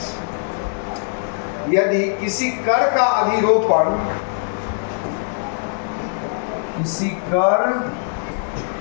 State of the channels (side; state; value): right; silent; 64 dB below the other